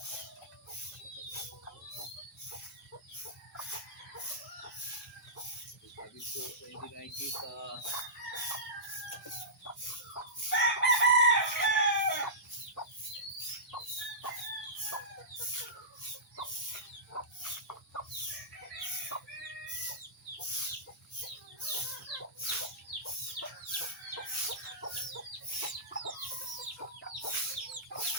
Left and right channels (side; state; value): both; normal; correlation -0.18